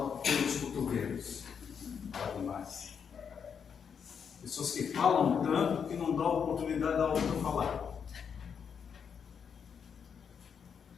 pelos cotovelos. Fala demais. Pessoas que falam tanto que não dão oportunidade da outra falar.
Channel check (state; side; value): quieter; right; 7.0 dB